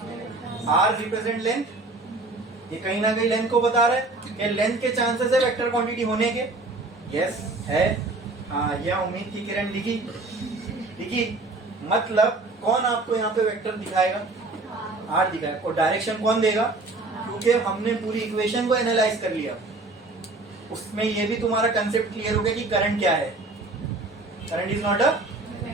आर रिप्रेजेंट लेंथ, ये कहीं ना कहीं लेंथ को बता रहा है कि लेंथ के चांसेस है वेक्टर क्वांटिटी होने के। यस है, हाँ यह उम्मीद की किरण लिखी। मतलब कौन आपको यहाँ पे वेक्टर दिखाएगा? आर दिखाएगा। और डायरेक्शन कौन देगा? क्योंकि हमने पूरी इक्वेशन को एनालाइज कर लिया, उसमें ये भी तुम्हारा कंसेप्ट क्लियर हो गया कि करंट क्या है। करंट इज नॉट अ,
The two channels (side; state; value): left; quieter; 3.2 dB